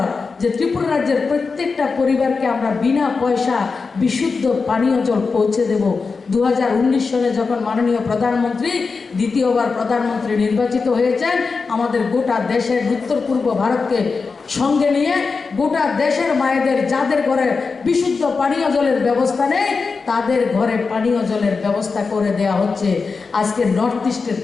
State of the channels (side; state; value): right; quieter; 4.6 dB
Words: যে ত্রিপুরা রাজ্যের প্রত্যেকটা পরিবারকে আমরা বিনা পয়সা বিশুদ্ধ পানীয় জল পৌঁছে দেব। 2019 সালে যখন মাননীয় প্রধানমন্ত্রী দ্বিতীয়বার প্রধানমন্ত্রী নির্বাচিত হয়েছেন, আমাদের গোটা দেশের উত্তর পূর্ব ভারতকে সঙ্গে নিয়ে গোটা দেশের মায়েদের যাদের ঘরে বিশুদ্ধ পানীয় জলের ব্যবস্থা নেই, তাদের ঘরে পানীয় জলের ব্যবস্থা করে দেওয়া হচ্ছে। আজকে নর্থ ইস্টের